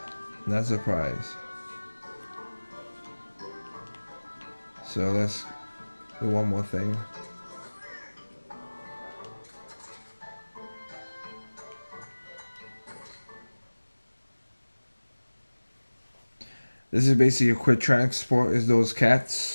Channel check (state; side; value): inverted; both; correlation -1.00